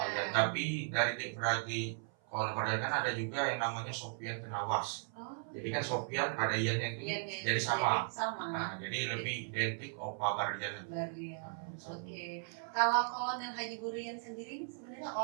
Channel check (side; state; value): left; silent; 53 dB below the other